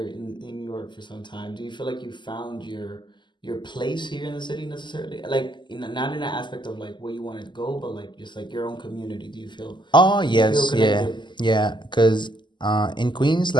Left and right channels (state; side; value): late; right; 0.22 ms